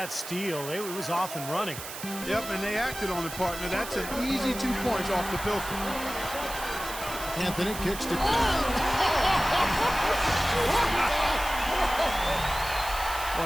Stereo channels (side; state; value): right; noise; hiss, 10 dB below the sound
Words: steal, it was off and running. Yep, and they acted on it, partner. That's an easy 2 points off the pilfer. Anthony kicks to...